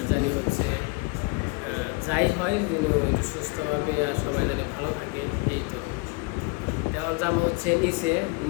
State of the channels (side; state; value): right; quieter; 26.7 dB